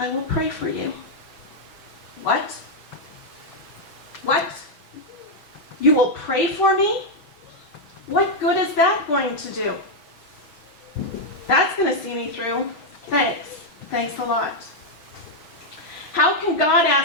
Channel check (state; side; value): late; right; 6.3 ms